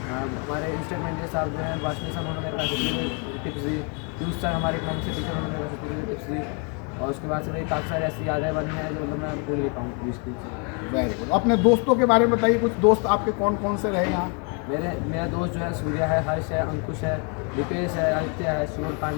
हमारे इंस्ट्रूमेंट साहब जो हैं वाशनी सर, उन्होंने मेरे पास टिप्स दी, पीयूष सर हमारे इकोनॉमिक्स के टीचर, उन्होंने मेरे पास टिप्स दी, और उसके बाद से मेरी काफ़ी सारी ऐसी यादें बनी हैं जो मतलब मैं भूल नहीं पाऊँ स्कूल से। Very good. अपने दोस्तों के बारे में बताइए, कुछ दोस्त आपके कौन कौन से रहे यहाँ? मेरा दोस्त जो है सूर्या है, हर्ष है, अंकुश है, दीपेश है, आदित्य है, शिवर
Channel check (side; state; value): right; quieter; 36.3 dB